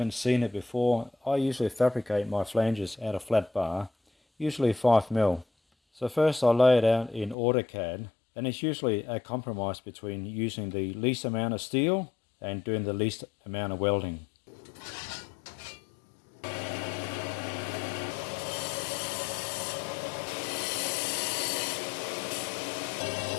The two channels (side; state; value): right; drops out; at 7.4 s